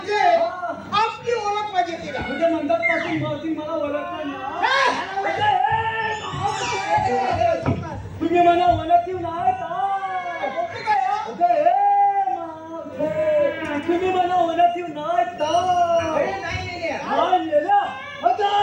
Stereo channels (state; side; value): identical; both; correlation 1.00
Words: आपली ओळख पाहिजे तिला. म्हणजे मंदात पासून मला ओळखणार ना तुम्ही मला ओळखीव नाही तुम्ही मला ओळखीव नाही